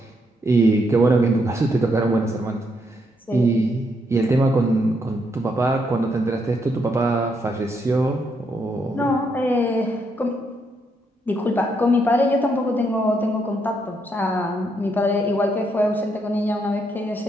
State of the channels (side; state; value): both; normal; correlation 0.76